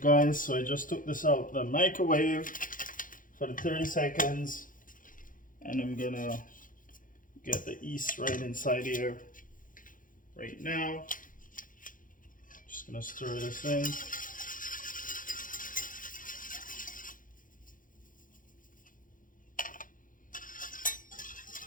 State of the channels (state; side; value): late; right; 0.39 ms